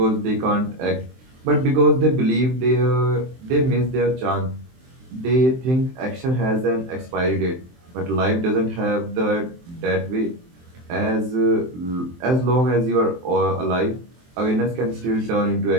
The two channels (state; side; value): late; left; 23 ms